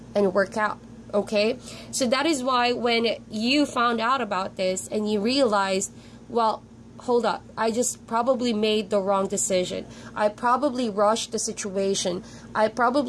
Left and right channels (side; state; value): both; identical; correlation 1.00